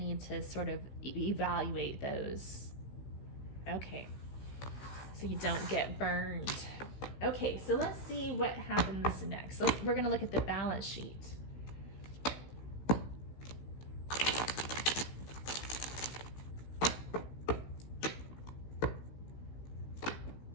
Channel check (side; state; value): right; late; 16 ms